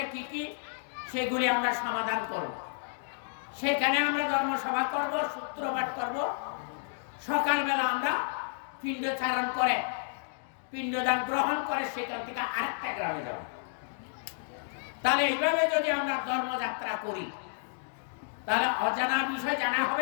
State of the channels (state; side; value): silent; right; digital silence